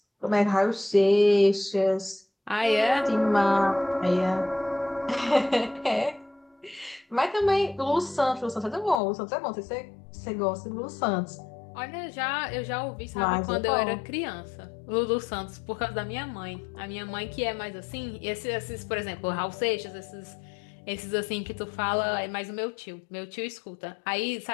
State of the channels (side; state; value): right; drops out; at 9.0 s